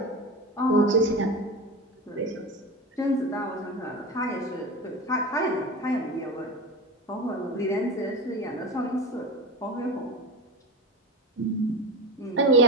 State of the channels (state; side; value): normal; both; correlation 0.24